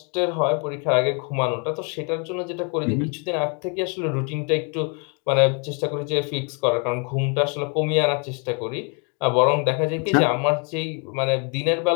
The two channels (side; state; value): right; quieter; 36.1 dB